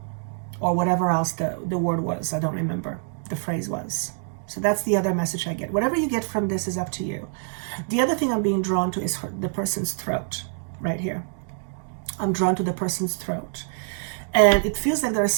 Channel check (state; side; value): silent; left; digital silence